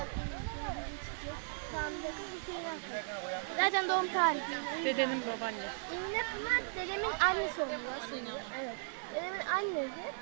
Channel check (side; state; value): left; silent; digital silence